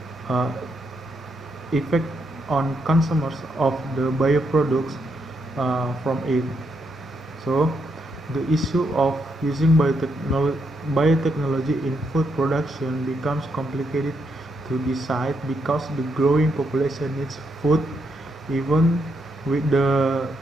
uh, effect on consumers of the bioproducts from it. So, the issue of using biotechnology in food production becomes complicated to decide because the growing population needs food even with the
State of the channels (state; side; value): normal; both; correlation 0.78